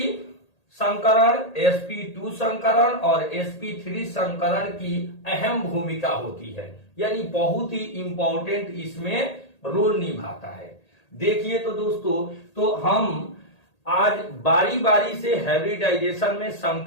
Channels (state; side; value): late; right; 1.8 ms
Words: संकरण, sp2 संकरण और sp3 संकरण की अहम भूमिका होती है, यानी बहुत ही इंपॉर्टेंट इसमें रोल निभाता है। देखिए तो दोस्तों, तो हम आज बारी बारी से हाइब्रिडाइजेशन में